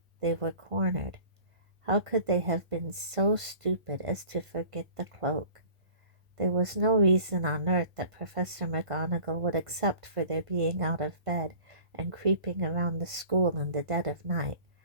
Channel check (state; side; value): late; left; 1.5 ms